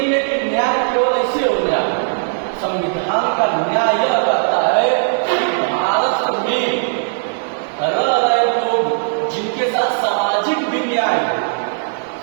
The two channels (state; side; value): silent; left; digital silence